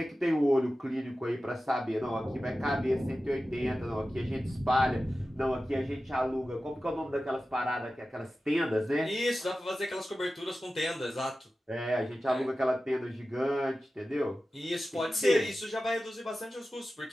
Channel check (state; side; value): normal; both; correlation 0.94